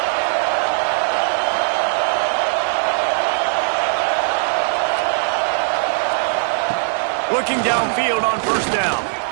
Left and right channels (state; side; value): silent; left; digital silence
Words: Looking downfield on first down.